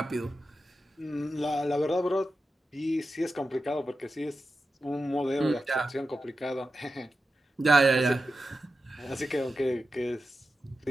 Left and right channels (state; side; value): normal; both; correlation 0.91